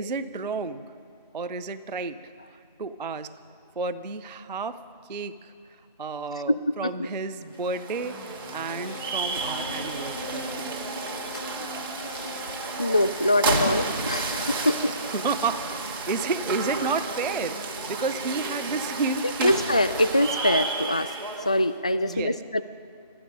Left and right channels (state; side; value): inverted; both; correlation -0.51